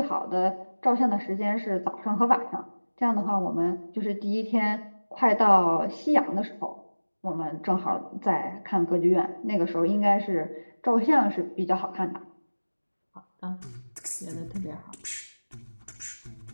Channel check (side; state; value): both; inverted; correlation -1.00